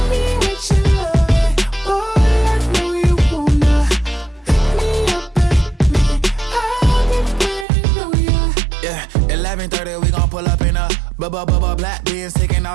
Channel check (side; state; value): left; drops out; at 7.7 s